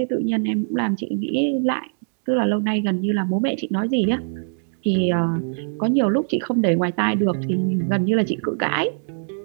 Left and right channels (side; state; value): left; silent; 62 dB below the other